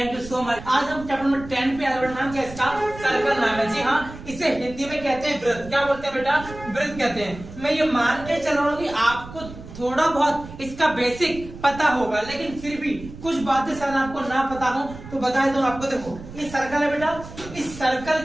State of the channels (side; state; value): right; noise; rumble, 15 dB below the sound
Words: you so much. आज हम चैप्टर नंबर 10 पे आगे बढ़ना, क्या इसका सर्कल नाम है। जी हाँ, इसे हिंदी में कहते हैं वृत्त। क्या बोलते हैं बेटा, वृत्त कहते हैं। मैं ये मान के चल रहा हूँ कि आपको थोड़ा बहुत इसका बेसिक पता होगा, लेकिन फिर भी कुछ बातें शायद आपको ना पता हो तो बता दूं आपको। देखो ये सर्कल है बेटा, इस सर्कल